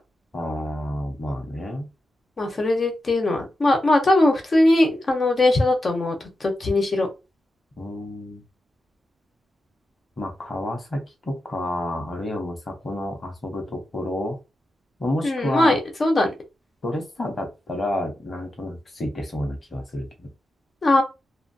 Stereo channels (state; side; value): normal; both; correlation 0.89